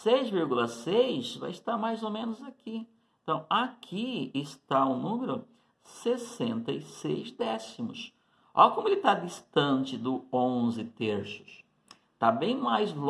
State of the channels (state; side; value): identical; both; correlation 1.00